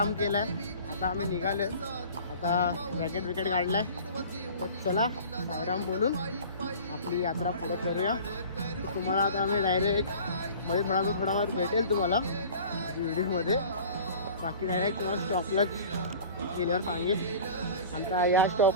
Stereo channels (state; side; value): inverted; both; correlation -0.42